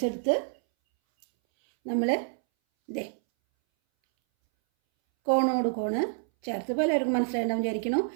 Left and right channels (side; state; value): left; silent; 60 dB below the other